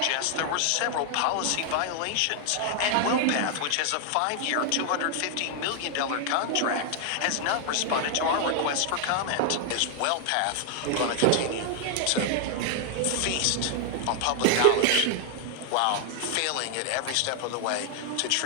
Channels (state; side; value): different; both; correlation 0.00